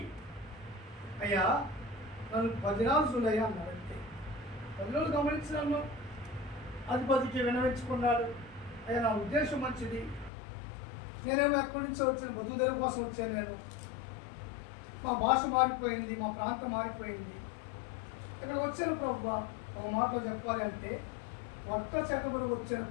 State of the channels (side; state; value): right; drops out; at 10.3 s